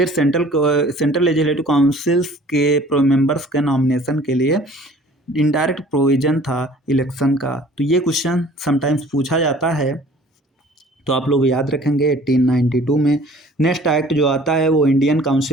सेंट्रल लेजिस्लेटिव काउंसिल्स के मेंबर्स के नॉमिनेशन के लिए इनडायरेक्ट प्रोविज़न था इलेक्शन का। तो ये क्वेश्चन समटाइम्स पूछा जाता है, तो आप लोग याद रखेंगे 1892 में। नेक्स्ट एक्ट जो आता है वो इंडियन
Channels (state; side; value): normal; both; correlation 0.50